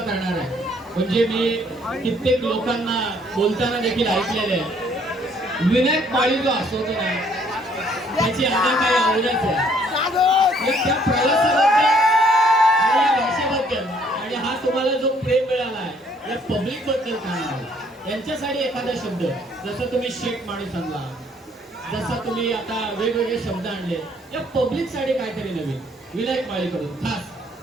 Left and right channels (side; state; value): both; normal; correlation 0.64